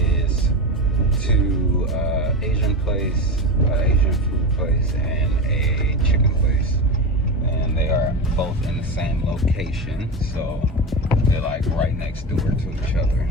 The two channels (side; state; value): both; normal; correlation 0.21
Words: to Asian place, Asian food place, and a chicken place. And they are both in the same location, so they're like right next door to each other